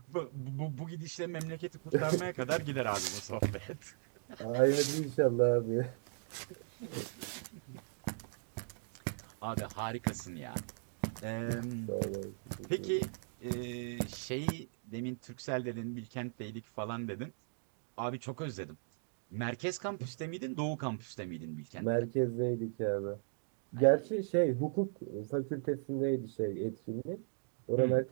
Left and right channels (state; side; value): silent; left; digital silence